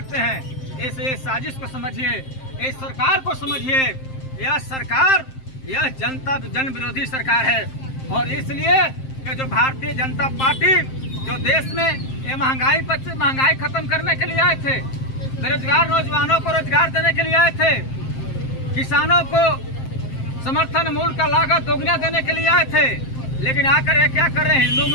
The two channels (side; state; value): right; late; 7.6 ms